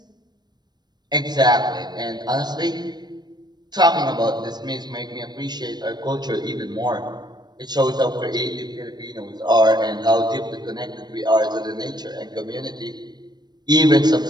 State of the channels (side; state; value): left; late; 0.20 ms